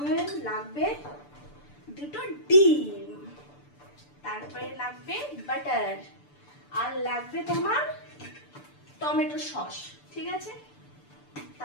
লাগবে দুটো ডিম, তারপরে লাগবে বাটার, আর লাগবে তোমার টমেটো সস, ঠিক আছে।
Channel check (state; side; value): late; right; 6.8 ms